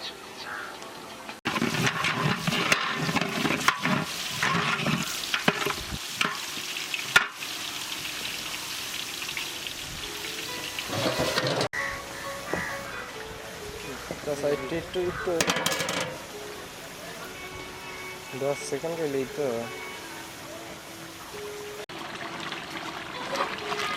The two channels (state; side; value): identical; both; correlation 1.00